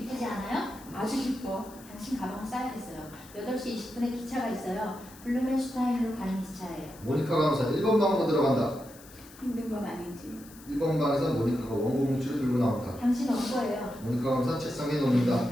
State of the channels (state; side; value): noise; left; hiss, 21 dB below the sound